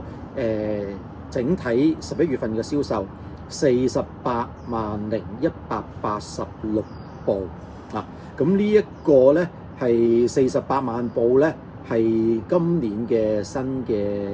整體11月份嘅銷售48,186部啊，咁呢一個咧係48萬部咧，係今年嘅新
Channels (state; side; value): identical; both; correlation 1.00